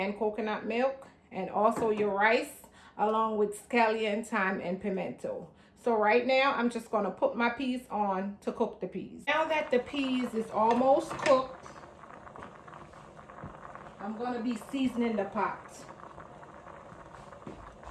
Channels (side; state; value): both; identical; correlation 1.00